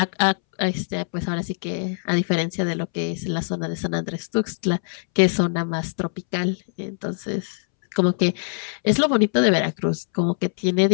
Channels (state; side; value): silent; right; 63 dB below the other